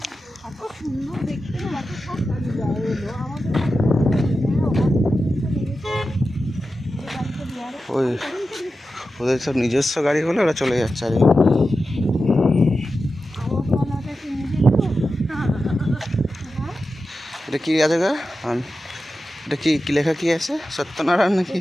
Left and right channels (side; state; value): both; normal; correlation 0.92